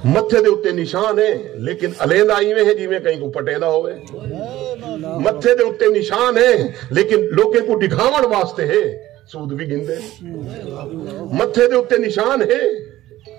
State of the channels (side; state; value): left; quieter; 15.2 dB